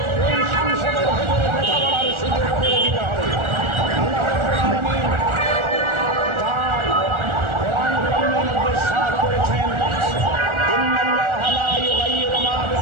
এই সংসদের ভেতরে কথা বলার সুযোগ করে দিতে হবে। আল্লাহ রাব্বুল আলামিন তার কোরআন কারীমের মধ্যে ইরশাদ করেছেন, ইন্নাল্লাহা লা ইউগাইয়িরু মা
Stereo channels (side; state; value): left; late; 1.4 ms